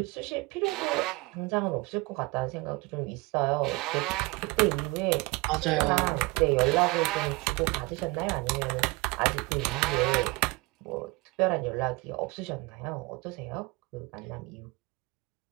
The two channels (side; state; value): left; quieter; 24.7 dB